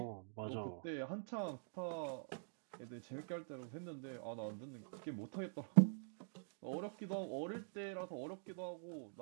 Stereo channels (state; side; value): silent; left; digital silence